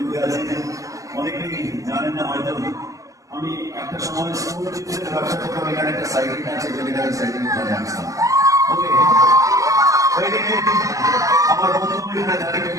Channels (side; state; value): left; late; 0.16 ms